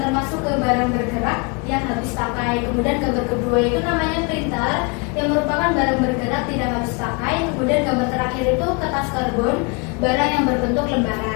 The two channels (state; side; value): quieter; right; 31.1 dB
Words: ke barang bergerak yang habis pakai. Kemudian gambar kedua itu namanya printer yang merupakan barang bergerak tidak habis pakai. Kemudian gambar terakhir itu kertas karbon, barang yang berbentuk